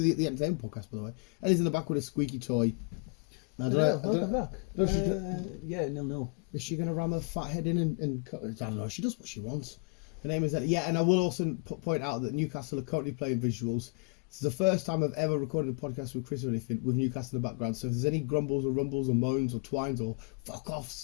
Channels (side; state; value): right; quieter; 36.5 dB